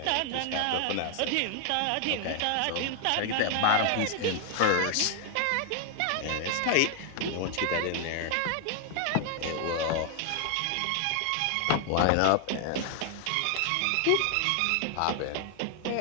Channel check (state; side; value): different; both; correlation 0.00